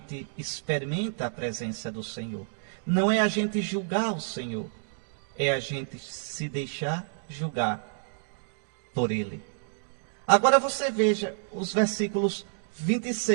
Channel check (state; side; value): silent; left; digital silence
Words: experimenta a presença do Senhor. Não é a gente julgar o Senhor, é a gente se deixar julgar por Ele. Agora você veja os versículos